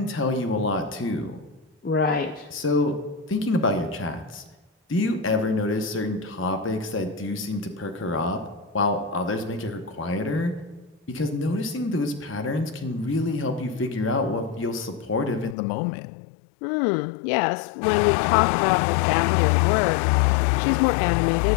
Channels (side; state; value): right; drops out; at 15.6 s